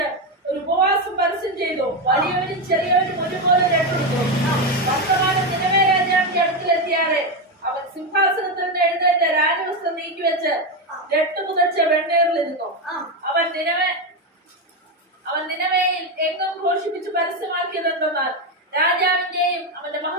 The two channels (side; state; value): both; normal; correlation 0.10